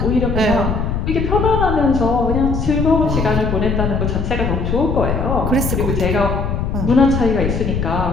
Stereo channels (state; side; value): noise; left; rumble, 1 dB below the sound